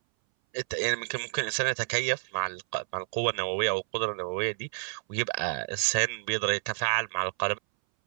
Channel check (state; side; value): silent; left; 58 dB below the other